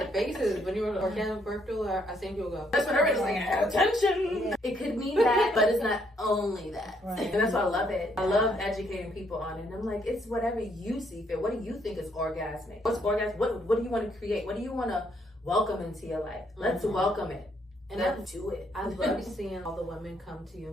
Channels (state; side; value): normal; both; correlation 0.71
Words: faces. When you were orgasmic birth doula, I seen people go, that's what everybody's like, attention. It could mean that, but it's not only that. And that's why I love it. I love educating people on it. And I'm like, it's whatever you see fit. What do you think is orgasmic? What's orgasmic? What do you want to create? What do you want to welcome into your life? Let's welcome it. And let's do it. I love seeing all the women come to you